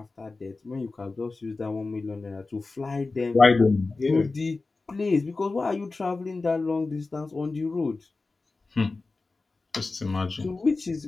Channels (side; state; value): right; quieter; 3.7 dB